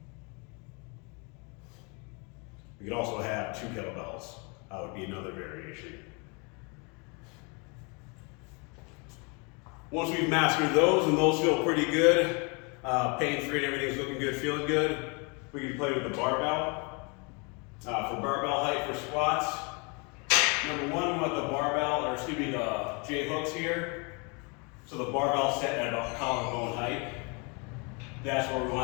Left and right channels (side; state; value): right; quieter; 32.3 dB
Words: We could also have two kettlebells. That would be another variation. Once we've mastered those, and those feel pretty good, pain-free and everything's looking good, feeling good, we can play with the barbell. For barbell height for squats, number one, we want the barbell, or excuse me, the J hooks here. So the barbell set at about collarbone height. That's where we